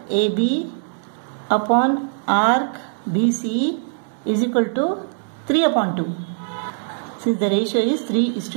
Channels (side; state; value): left; silent; 65 dB below the other